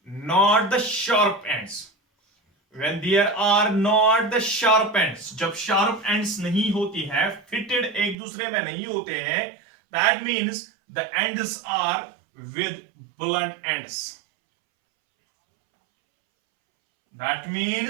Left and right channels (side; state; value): left; drops out; at 8.2 s